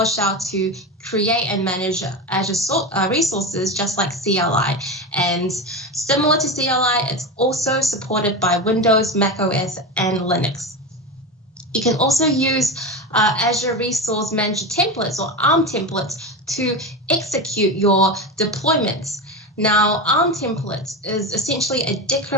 to create and manage Azure resources just like CLI. And similar to CLI, it's also supported by Windows, Mac OS, and Linux. You can also use Azure Resource Manager templates or ARM templates to execute your deployments. Now, ARM templates is essentially a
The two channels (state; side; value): normal; both; correlation 0.21